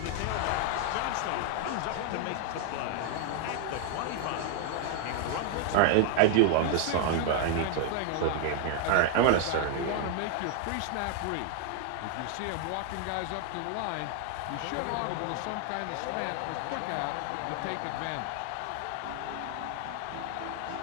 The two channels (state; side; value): different; both; correlation 0.00